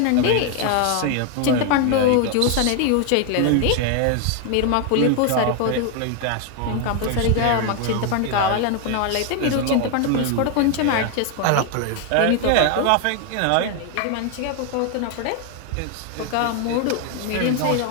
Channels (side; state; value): both; different; correlation 0.01